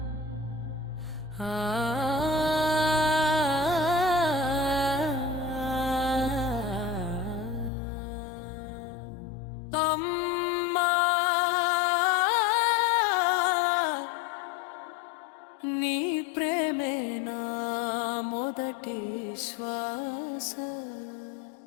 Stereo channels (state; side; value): drops out; right; at 7.7 s